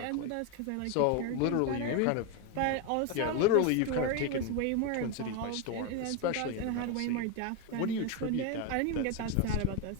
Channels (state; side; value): different; both; correlation 0.02